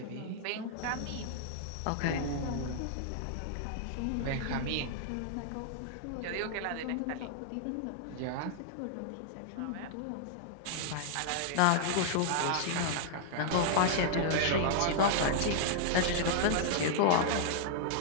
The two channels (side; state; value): both; different; correlation -0.01